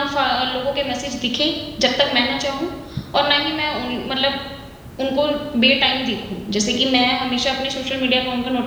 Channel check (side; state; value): both; identical; correlation 1.00